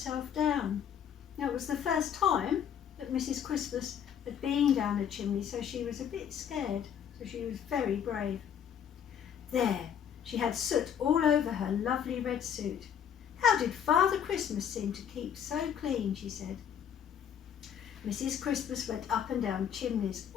down. Now, it was the first time that Mrs. Christmas had been down a chimney, so she was a bit scared, so she was very brave. There, she had soot all over her lovely red suit. How did Father Christmas seem to keep so clean, she said. Mrs. Christmas went up and down chimneys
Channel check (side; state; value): right; quieter; 8.6 dB